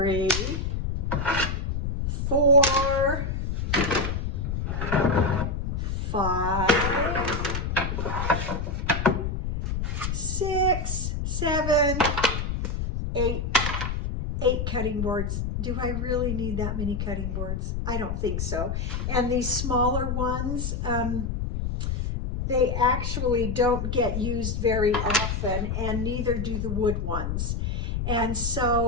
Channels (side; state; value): left; noise; rumble, 2 dB below the sound